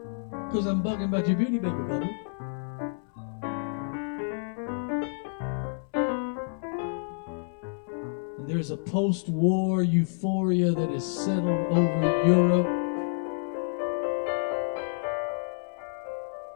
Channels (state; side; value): silent; right; 59 dB below the other